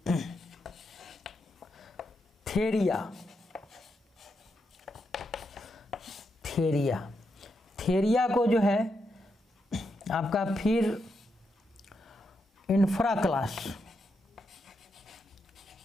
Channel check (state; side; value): normal; both; correlation 0.83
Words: थेरिया को जो है आपका फिर इंफ्रा